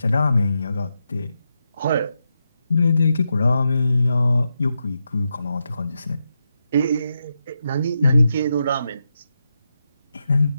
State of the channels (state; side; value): inverted; both; correlation -0.85